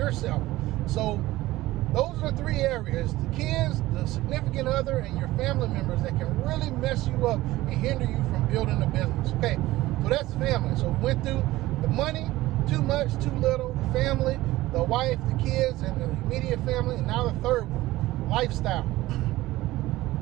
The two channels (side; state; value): left; quieter; 17.3 dB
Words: So those are the three areas: the kids, the significant other, and your family members that can really mess you up and hinder you from building a business. Okay, so that's family. So we went through the money, too much, too little, the family, the wife, the kids, and the immediate family, and now the third one, lifestyle.